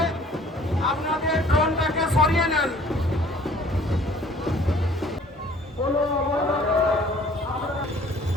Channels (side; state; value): both; normal; correlation 0.54